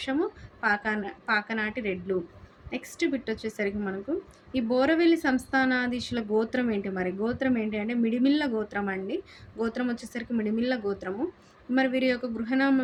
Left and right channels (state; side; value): identical; both; correlation 1.00